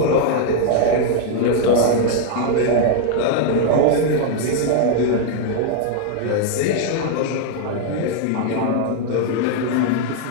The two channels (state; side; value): different; both; correlation 0.00